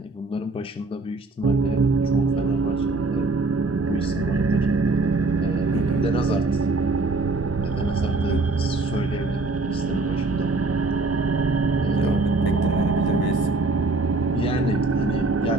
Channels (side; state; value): left; quieter; 3.3 dB